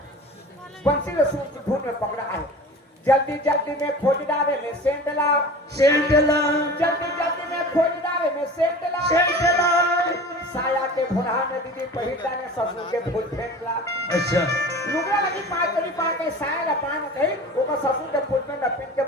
बंसी ने सूट धुन में पकड़ा है जल्दी जल्दी में खोज डाले में सेंटला सेंटला जल्दी में खोज डाले में सेंटला सेंटला साया के भुरहा में दीदी पहिला ने ससुर के फूल फेंकला अच्छा लुगरा लगी पार के साया ला पान कही ओका ससुर के फूल पे लपेट के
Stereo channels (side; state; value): both; normal; correlation 0.38